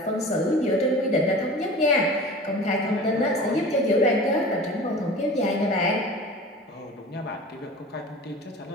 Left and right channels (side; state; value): both; normal; correlation 0.38